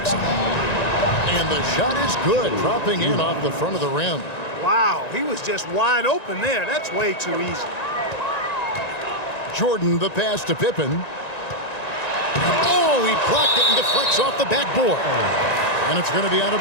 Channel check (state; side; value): late; right; 1.9 ms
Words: And the shot is good, dropping in off the front of the rim. Wow, he was just wide open there. That's way too easy. Jordan, the pass to Pippen. Oh, he blocked it and deflects off the backboard. And it's going to be out of